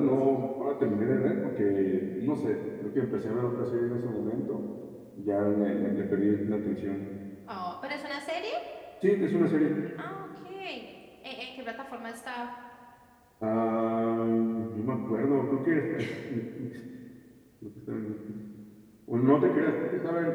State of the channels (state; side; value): identical; both; correlation 1.00